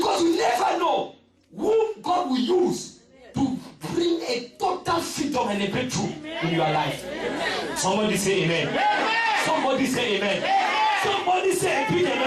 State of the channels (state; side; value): identical; both; correlation 1.00